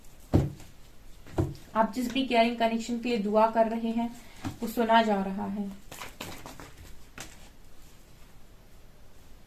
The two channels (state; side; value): identical; both; correlation 1.00